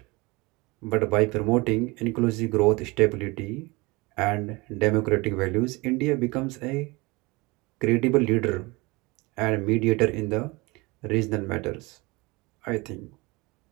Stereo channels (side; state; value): left; quieter; 24.5 dB